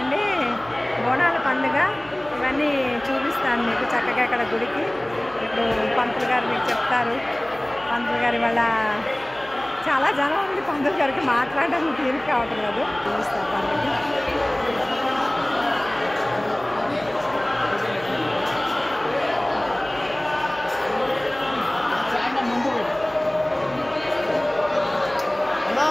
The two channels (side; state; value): left; noise; hum, 23 dB below the sound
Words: బోనాల పండుగ. ఇవన్నీ చూపిస్తాను మీకు చక్కగా ఇక్కడ గుడికి. ఇప్పుడు పంతులు గారు మీకు చెప్తారు. పంతులు గారు ఇవాళ చాలా జనం ఉంది. పంతులు గారికి మాట్లాడడానికి తీరిక కావటం లేదు. చూపిస్తారు పండుగ.